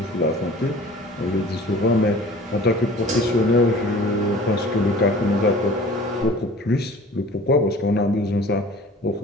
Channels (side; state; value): both; normal; correlation 0.45